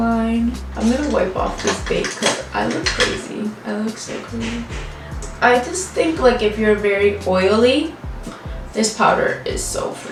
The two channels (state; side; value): identical; both; correlation 1.00